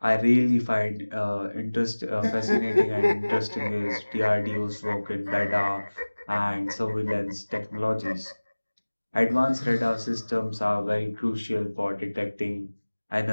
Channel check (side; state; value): both; inverted; correlation -1.00